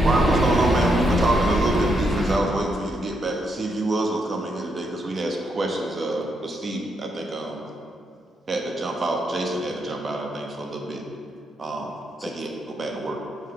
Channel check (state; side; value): normal; both; correlation 0.79